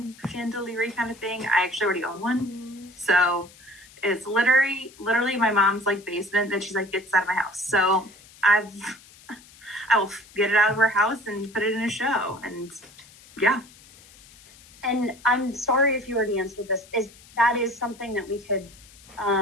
chandelier kind of thing, I actually already own one. So it's literally my mom's like basement that she's like, gets out of my house. So I will get it out of her house and put it in a show. And yeah. And I'm sorry if you already answered this. That is something that we could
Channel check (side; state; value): left; noise; hiss, 23 dB below the sound